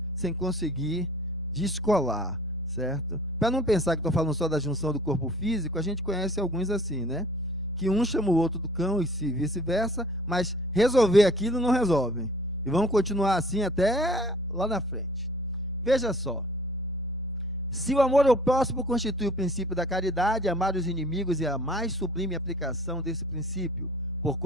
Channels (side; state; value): both; normal; correlation 0.50